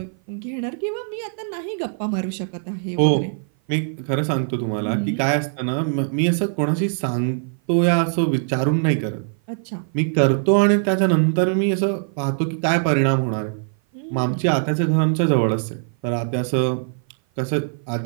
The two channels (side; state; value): left; silent; 56 dB below the other